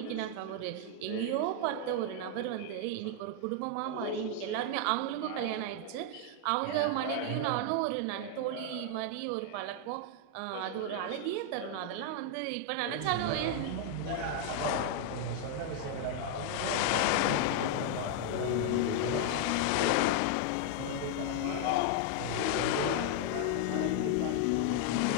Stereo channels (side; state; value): both; different; correlation 0.00